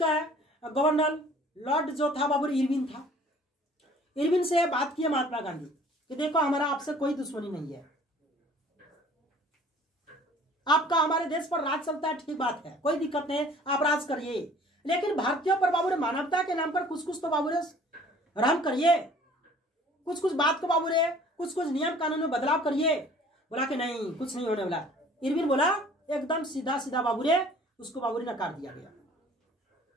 गवर्नर लॉर्ड जो था बाबू इरविन था। इरविन से बात की महात्मा गांधी कि देखो हमारा आपसे कोई दुश्मनी नहीं है, आपका हमारे देश पर राज चलता है, ठीक बात है, कोई दिक्कत नहीं, आप राज करिए, लेकिन भारतीयों पर बाबू मानवता के नाम पर कुछ कुछ तो बाबू रहम करिए, कुछ कुछ बात को बाबू कुछ कुछ नियम कानून में बदलाव करिए। बोला कि नहीं, कुछ नहीं होने वाला। इरविन बोला एकदम सीधा सीधा बाबू उसको बाबू नकार दिया गया।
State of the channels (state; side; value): normal; both; correlation 0.51